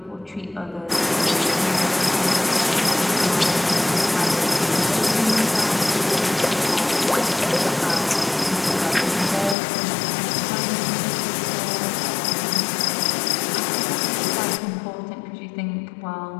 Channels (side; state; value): right; drops out; at 9.6 s